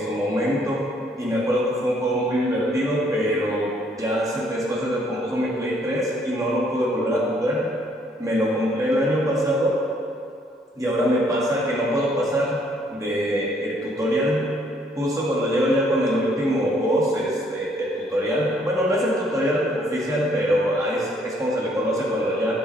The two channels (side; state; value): both; normal; correlation 0.66